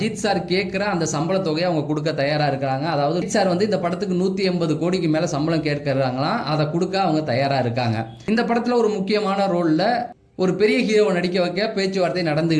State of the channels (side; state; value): both; identical; correlation 1.00